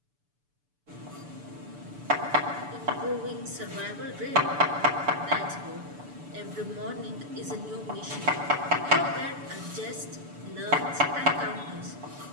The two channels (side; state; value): left; late; 6.9 ms